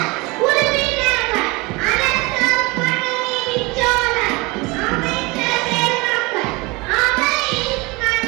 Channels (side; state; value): left; quieter; 24.9 dB